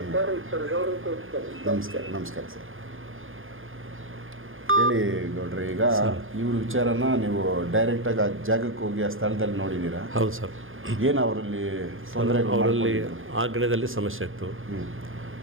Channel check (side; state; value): left; late; 0.59 ms